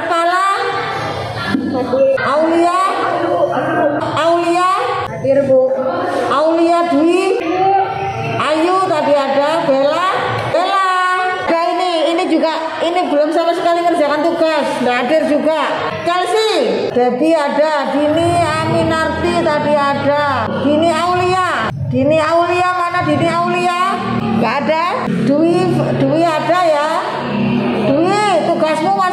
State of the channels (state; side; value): identical; both; correlation 1.00